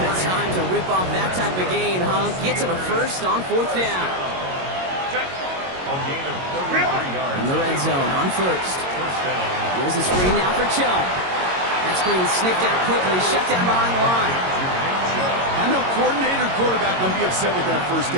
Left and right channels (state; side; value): late; left; 22 ms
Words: a time to rip off that type of gain, huh? Gets him a first on fourth down. A gain of 33 yards. In the red zone on first. First down. Here's the screen now for Chubb. That screen sniffed out quickly, shut down behind the line. I know coordinator quarterback going to be upset with that first